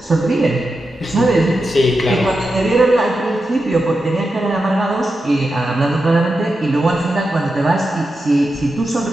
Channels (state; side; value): normal; both; correlation 0.89